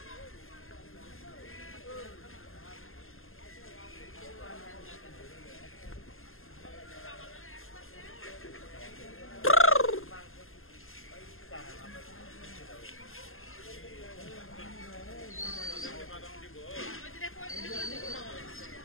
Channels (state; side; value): late; right; 0.60 ms